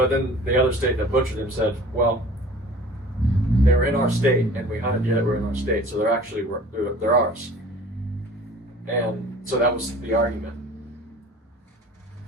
then the other state that butchered them said, well, they were in our state, and we hunted deer that were in our state, so they're ours. And so that was the argument.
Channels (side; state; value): both; normal; correlation 0.46